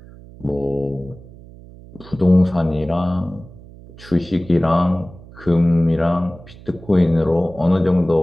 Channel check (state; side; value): noise; right; hum, 20 dB below the sound